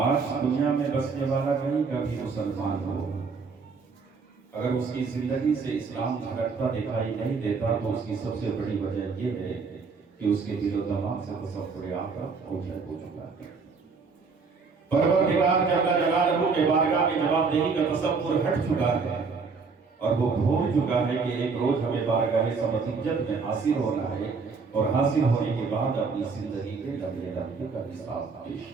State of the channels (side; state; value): left; quieter; 4.9 dB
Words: دنیا میں بسنے والا کہیں کا بھی مسلمان ہو، اگر اس کی زندگی سے اسلام جھلکتا دکھائی نہیں دیتا تو اس کی سب سے بڑی وجہ یہ ہے کہ اس کے دل و دماغ سے تصور آخرت اوجھل ہو چکا ہے۔ پروردگار جل جلالہ کے بارگاہ میں جواب دہی کا تصور ہٹ چکا ہے اور وہ بھول چکا ہے کہ ایک روز ہمیں بارگاہ سمجھت میں حاصل ہونا ہے اور حاصل ہونے کے بعد اپنی زندگی کے لمحے لمحے کا حساب پیش